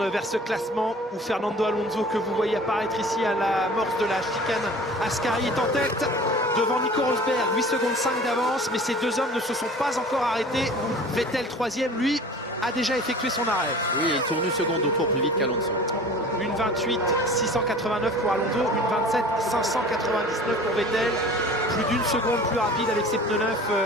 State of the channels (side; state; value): both; normal; correlation 0.43